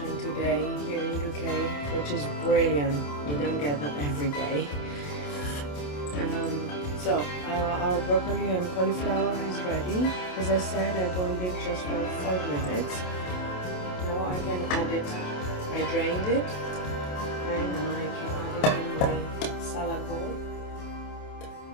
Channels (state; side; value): late; right; 28 ms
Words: today here in UK, which is brilliant. We don't get that every day. So our broccoli and cauliflower is ready. As I said, I boiled it just for 5 minutes. Now I can add it. I drained it, and I can add it in my salad bowl.